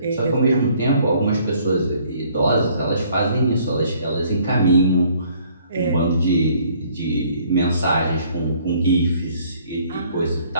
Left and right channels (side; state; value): both; inverted; correlation -0.61